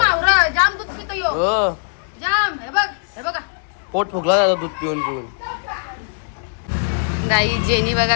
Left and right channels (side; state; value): right; silent; digital silence